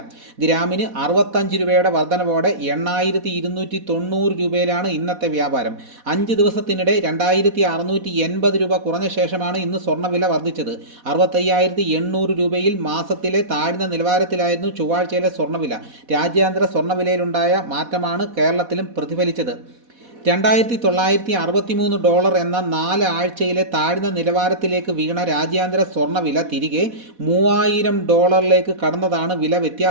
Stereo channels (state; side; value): late; left; 4.1 ms